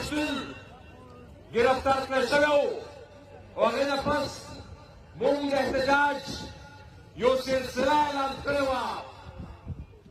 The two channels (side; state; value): both; identical; correlation 1.00